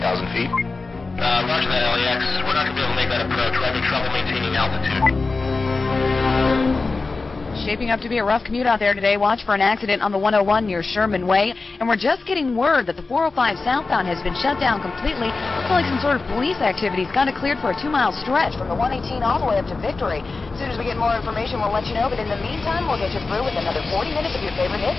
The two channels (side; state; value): right; quieter; 3.8 dB